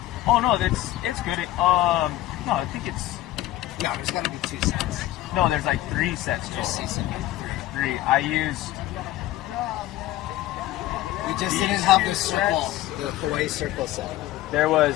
Oh no, it's good. No, I think it's. No, there's got to be 2 sets. No, there's like 3 sets total. 3. I used. We just didn't have the circle, the Hawaii circle set. There was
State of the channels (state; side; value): quieter; right; 15.3 dB